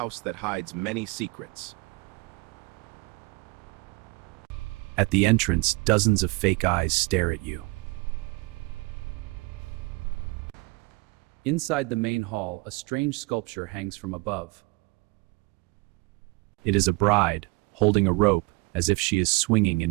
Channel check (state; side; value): quieter; left; 26.1 dB